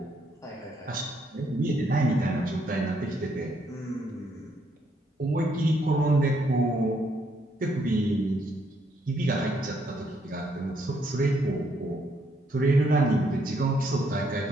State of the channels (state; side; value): normal; both; correlation 0.72